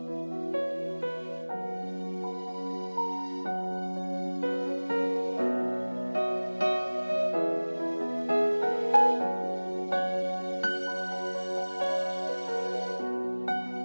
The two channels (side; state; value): both; inverted; correlation -1.00